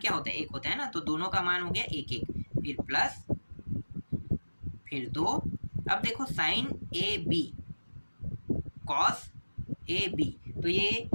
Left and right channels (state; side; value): inverted; both; correlation -1.00